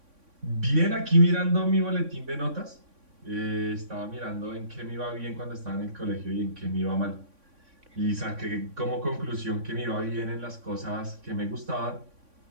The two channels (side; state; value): left; late; 3.6 ms